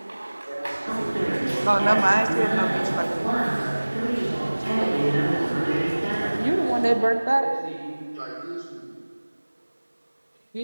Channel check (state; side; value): inverted; both; correlation -1.00